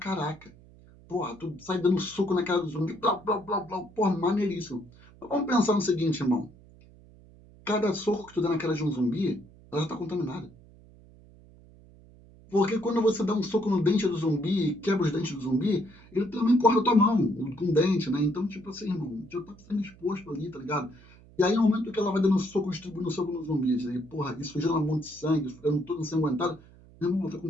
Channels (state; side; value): noise; right; hum, 24 dB below the sound